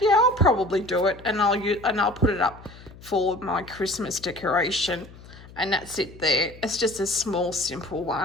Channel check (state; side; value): noise; left; hum, 19 dB below the sound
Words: yeah, I'll probably do it and I'll put it up for my Christmas decoration. And that's it there. It's just a small, simple